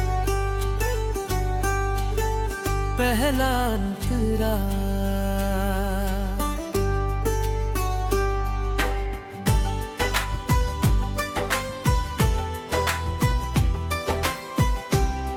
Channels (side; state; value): both; identical; correlation 1.00